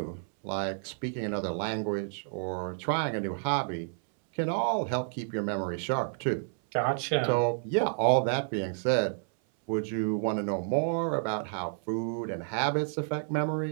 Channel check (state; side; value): silent; left; 58 dB below the other